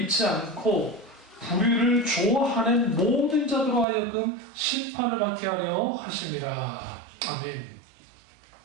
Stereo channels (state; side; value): drops out; left; at 3.9 s